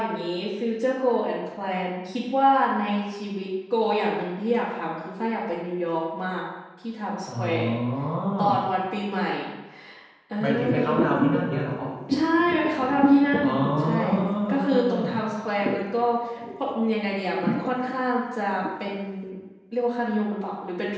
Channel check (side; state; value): both; identical; correlation 1.00